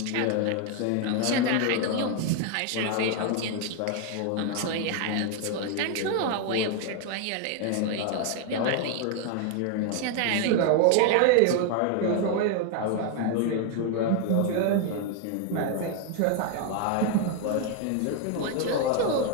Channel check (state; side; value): different; both; correlation 0.01